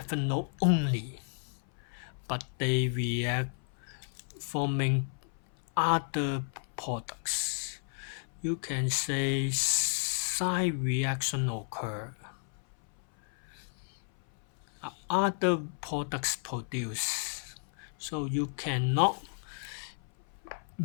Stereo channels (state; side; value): silent; right; 56 dB below the other